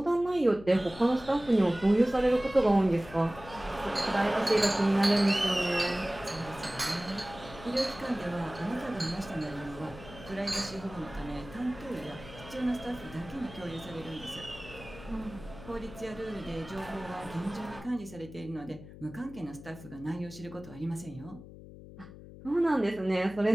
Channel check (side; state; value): left; noise; hum, 16 dB below the sound